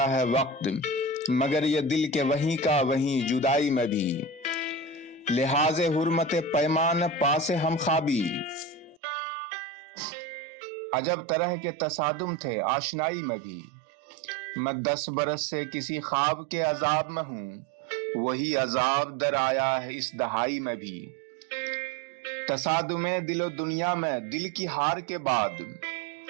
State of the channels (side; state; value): left; drops out; at 9.0 s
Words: ہے وقت، مگر یہ دل کے وہیں کا وہیں جدائی میں بھی، لحاظ حرمت پیمان پاس ہم خوابی، عجب طرح کے تصادم تھے آشنائی میں بھی، میں 10 برس سے کسی خواب کے عذاب میں ہوں، وہی عذاب در آیا ہے اس دہائی میں بھی، تصادم دل و دنیا میں دل کی ہار کے بعد